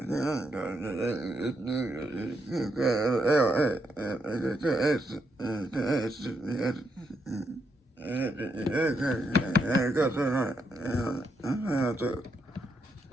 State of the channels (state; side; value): normal; both; correlation 0.80